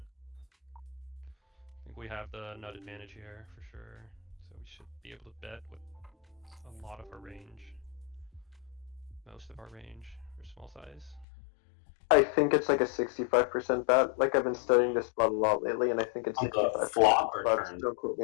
I think we have the nut advantage here for sure. So we should be able to bet with a lot of our range. Most of our range for small size. I think it's like a 65% bet. Like I've been studying this spot a lot lately, and I think it's On the 65%. flop or But turn? don't quote me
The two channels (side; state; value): right; drops out; at 11.2 s